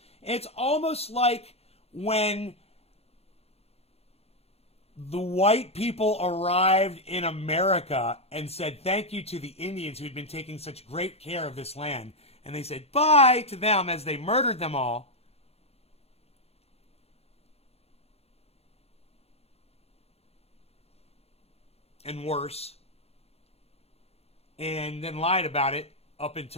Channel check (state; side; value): late; right; 0.29 ms